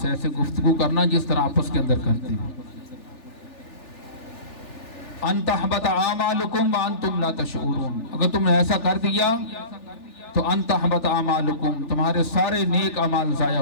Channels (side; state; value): right; late; 3.4 ms